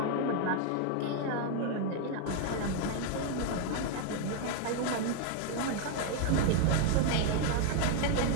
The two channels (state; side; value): different; both; correlation 0.00